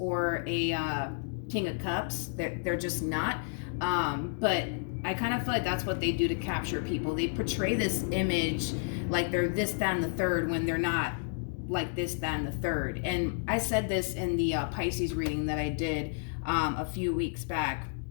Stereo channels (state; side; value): silent; right; digital silence